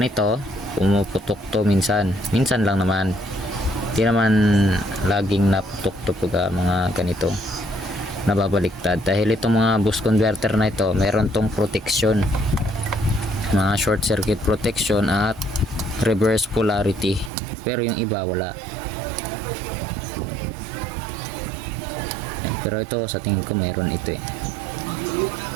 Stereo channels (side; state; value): left; drops out; at 17.3 s